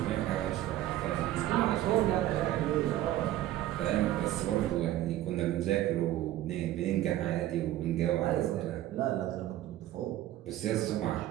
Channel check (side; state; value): left; quieter; 14.1 dB